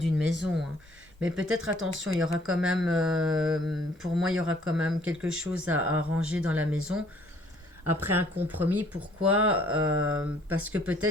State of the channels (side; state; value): both; normal; correlation 0.61